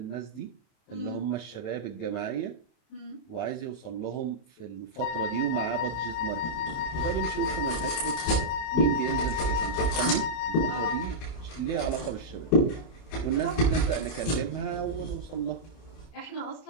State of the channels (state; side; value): late; right; 32 ms